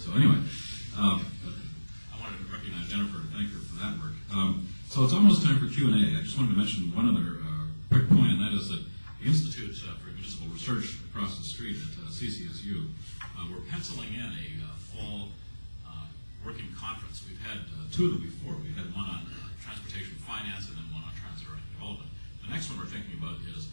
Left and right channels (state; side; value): inverted; both; correlation -1.00